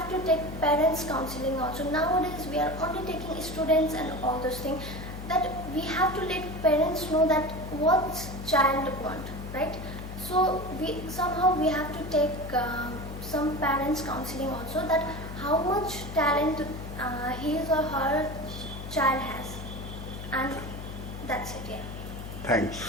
to take parents counseling also. Nowadays, we are only taking students and all those things. That we have to let parents know that what child want, right? So we have to take some parents counseling also, that how much talent his or her child has, and that's it. Yeah. Thanks.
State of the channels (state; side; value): noise; left; hum, 9 dB below the sound